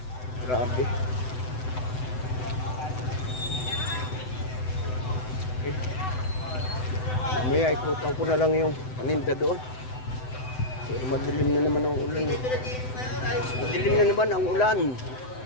Grabe. Okay. Mamaya ikutan ko na lang yung paninda doon. Pero madilim na naman ang ulan. Madilim na naman ang ulan.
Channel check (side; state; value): right; late; 7.9 ms